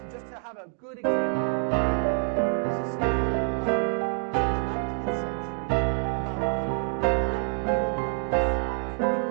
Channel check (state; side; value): silent; left; 60 dB below the other